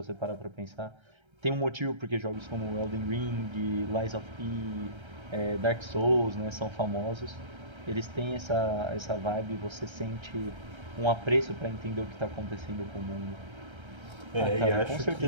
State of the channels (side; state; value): left; late; 1.3 ms